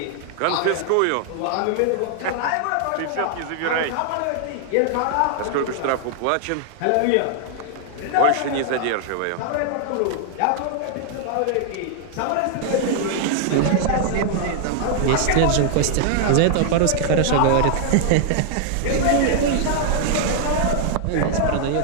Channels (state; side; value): different; both; correlation 0.00